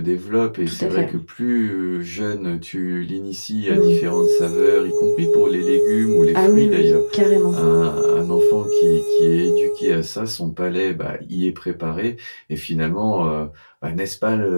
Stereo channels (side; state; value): both; inverted; correlation -1.00